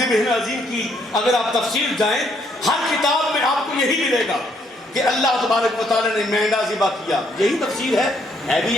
عَظِيمٍ کی اگر آپ تفسیر جائیں، ہر کتاب میں آپ کو یہی ملے گا کہ اللہ تبارک و تعالیٰ نے مہنگا ذبح کیا، یہی تفسیر ہے بھی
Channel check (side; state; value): both; normal; correlation 0.70